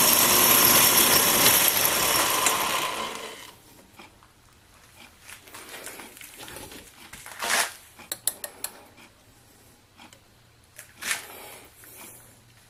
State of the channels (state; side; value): identical; both; correlation 1.00